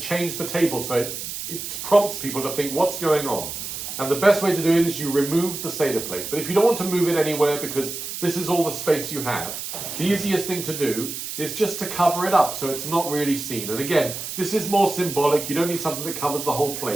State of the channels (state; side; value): noise; right; hiss, 7 dB below the sound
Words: the table so it prompts people to think what's going on. And the best way to do it is you remove the Seder plate. But if you don't want to move it anywhere because this is all the space you have, the easiest thing to do is just to cover it up so it's not really seen. And again, this is more symbolic. You don't need something that covers the whole